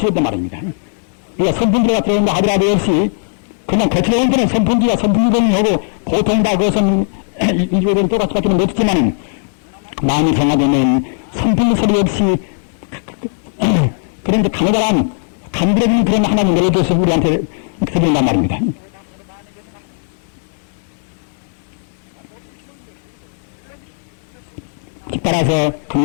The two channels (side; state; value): right; silent; digital silence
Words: 말입니다. 우리가 선풍기가 들어온다 하더라도 역시 그냥 거치는 때는 선풍기가 선풍기동이 하고 보통 다 그것은 인류들은 똑같이 밖에는 못했지만 마음이 정화되면 선풍기 소리 없이 그런 강렬한 간드러진 그런 하나님 멜로디에서 우리한테 드린단 말입니다. 따라서